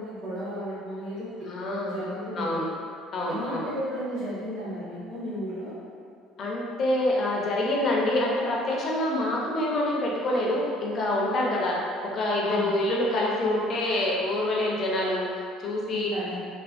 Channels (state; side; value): normal; both; correlation 0.57